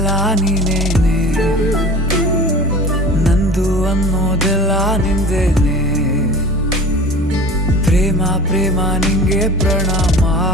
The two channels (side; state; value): both; normal; correlation 0.39